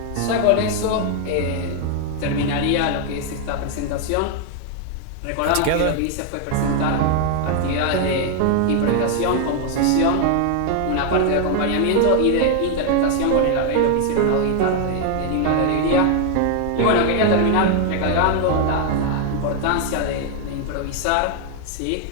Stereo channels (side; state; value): both; different; correlation 0.00